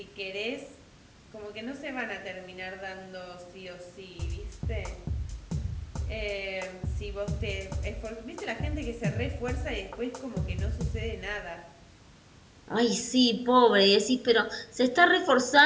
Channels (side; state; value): both; identical; correlation 1.00